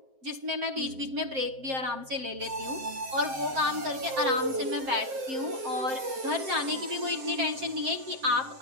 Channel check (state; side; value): late; left; 7.6 ms